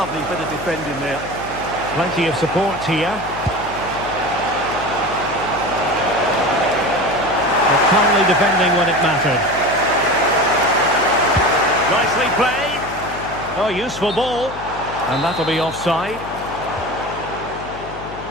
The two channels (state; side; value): noise; left; hum, 13 dB below the sound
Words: bit of defending there. Plenty of support here. But calmly defending when it mattered. Nicely played. Oh, useful ball. And that'll be offside.